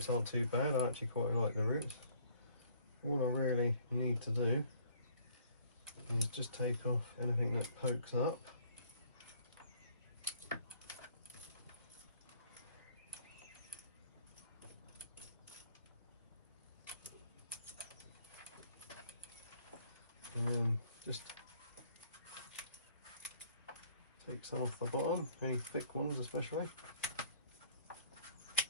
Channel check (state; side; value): inverted; both; correlation -0.60